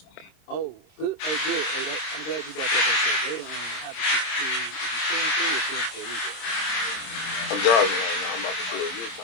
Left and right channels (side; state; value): right; late; 26 ms